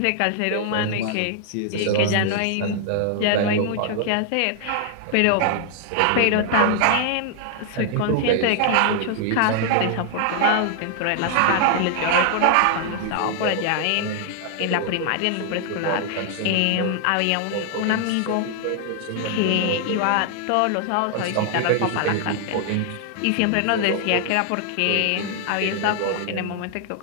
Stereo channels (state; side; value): different; both; correlation 0.00